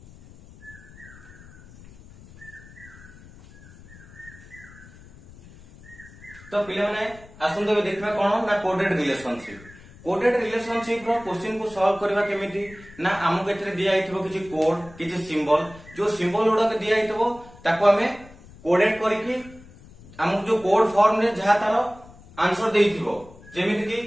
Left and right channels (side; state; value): left; noise; rumble, 21 dB below the sound